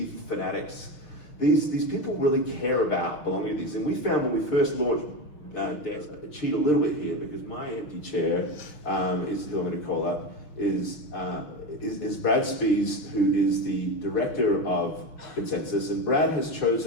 fanatics, these people really care about belonging to these. And we found when we first launched Desk, I cheat a little bit here because my empty chair is who I'm going to call up is Brad Spies, who is the director of Consensus, and Brad has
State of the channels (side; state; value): right; late; 6.2 ms